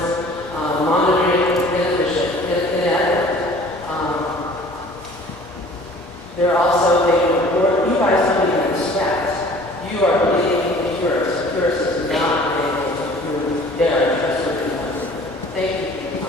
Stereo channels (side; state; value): both; normal; correlation 0.49